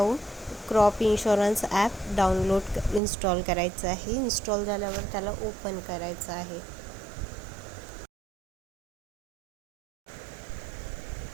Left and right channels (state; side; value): drops out; left; at 3.0 s